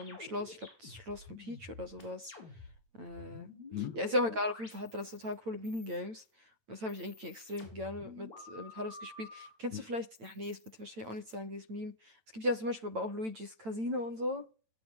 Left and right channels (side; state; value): left; late; 9.0 ms